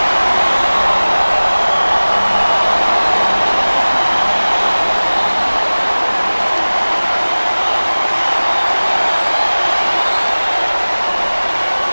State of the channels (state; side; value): inverted; both; correlation -1.00